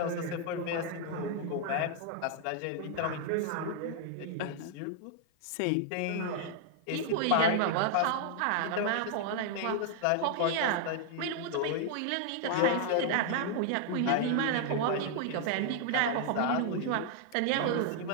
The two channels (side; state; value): both; different; correlation 0.00